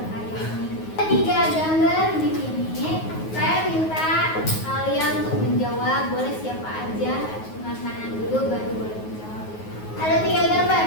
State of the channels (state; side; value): late; right; 9.4 ms